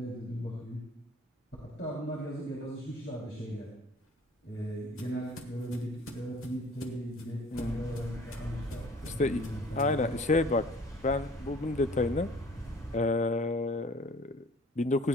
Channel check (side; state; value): both; normal; correlation 0.50